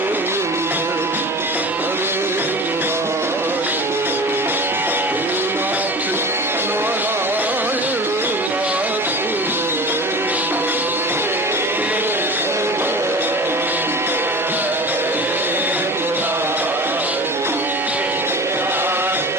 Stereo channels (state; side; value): normal; both; correlation 0.35